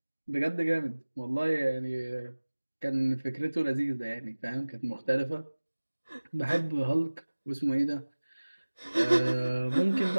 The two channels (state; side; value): inverted; both; correlation -1.00